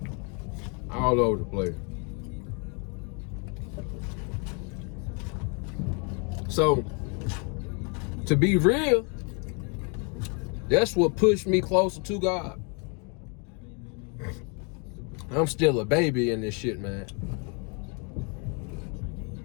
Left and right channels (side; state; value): right; quieter; 35.7 dB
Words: All over the place. So, to be real, that's what pushed me closer to God. I'm still a baby in this shit, man.